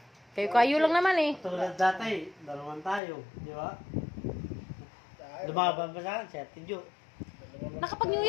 Kayo lang naman eh. Tulad dati, dalaman tayo, di ba? Lumaban pa sa akin, si Ate Jo. Nakapag-New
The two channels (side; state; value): right; drops out; at 3.0 s